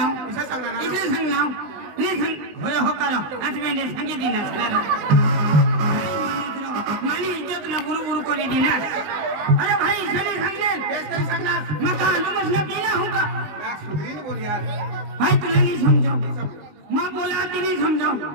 इसे सांगणार इसे सांगनाव नी सांग होय हो करो आज मैं सांगितली ना सलारो मानी इज्जत ना बुरु करे दिना अरे भाई सनी सांगले बेस करी सांगणार मग का तुमस ना पीना होगा यार सुधरीन बोल यार भाई तुला नहीं समझो मां बोला ती नहीं समझो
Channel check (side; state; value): left; late; 19 ms